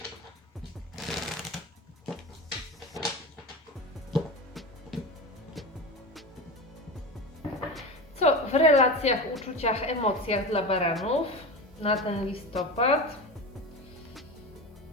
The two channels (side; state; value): both; normal; correlation 0.26